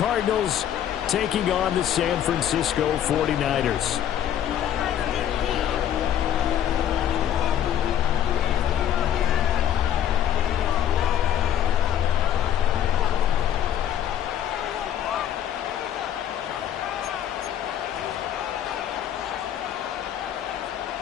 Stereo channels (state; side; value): quieter; right; 10.3 dB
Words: taking on the San Francisco 49ers.